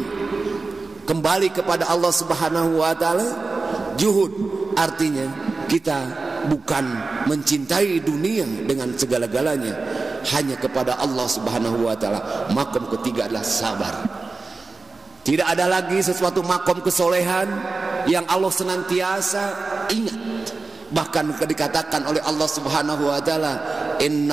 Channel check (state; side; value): quieter; left; 3.9 dB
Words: kembali kepada Allah Subhanahu wa taala. Juhud artinya kita bukan mencintai dunia dengan segala-galanya, hanya kepada Allah Subhanahu wa taala. Makom ketiga adalah sabar. Tidak ada lagi sesuatu makom kesolehan yang Allah senantiasa ingat. Bahkan dikatakan oleh Allah Subhanahu wa taala,